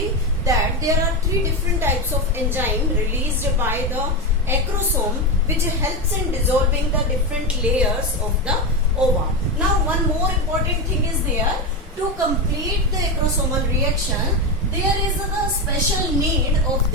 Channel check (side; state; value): both; normal; correlation 0.14